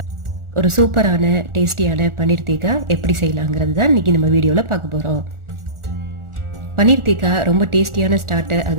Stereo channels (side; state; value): left; late; 1.4 ms